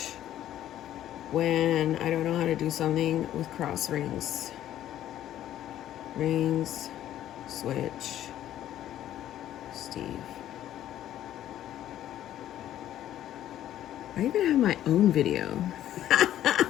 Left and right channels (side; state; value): right; quieter; 12.2 dB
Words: when I don't know how to do something with Krause rings. Rings, switch, Steve. I even have my own video.